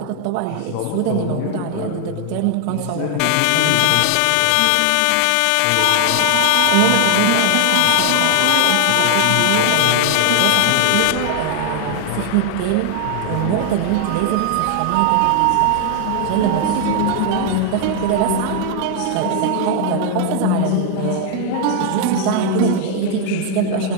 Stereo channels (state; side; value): different; both; correlation 0.00